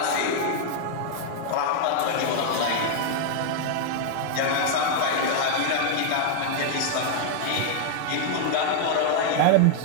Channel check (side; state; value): both; different; correlation -0.01